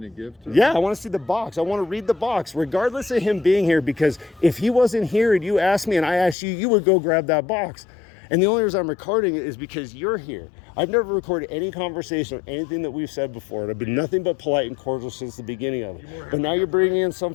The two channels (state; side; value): drops out; right; at 6.4 s